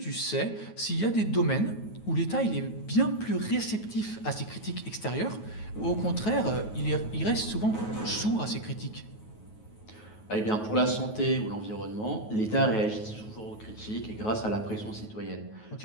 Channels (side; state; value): right; late; 9.3 ms